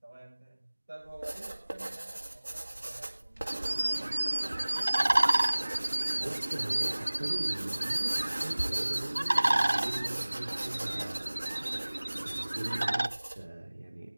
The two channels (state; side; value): inverted; both; correlation -1.00